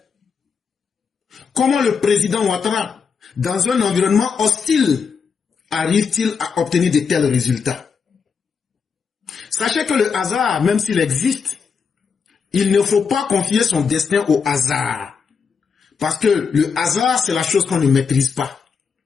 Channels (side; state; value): right; quieter; 5.9 dB